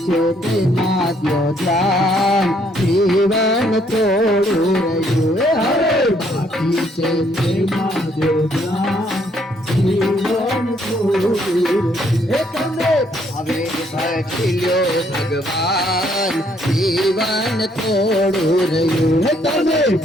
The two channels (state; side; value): normal; both; correlation 0.68